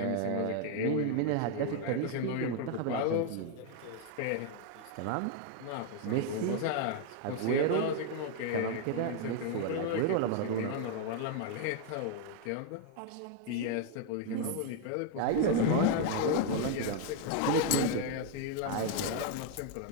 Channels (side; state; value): both; different; correlation 0.00